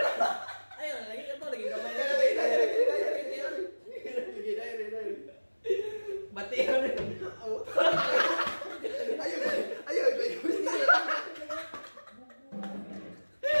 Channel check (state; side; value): inverted; both; correlation -1.00